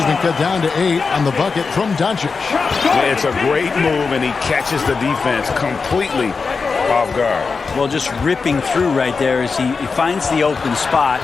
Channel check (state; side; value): quieter; right; 4.8 dB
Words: been cut down to 8 on the bucket from Doncic. Yeah, it's a great move, and he catches the defense completely off guard. Well, just ripping through right there as he finds the open spot